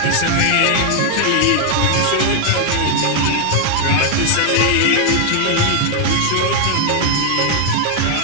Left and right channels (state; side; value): different; both; correlation 0.00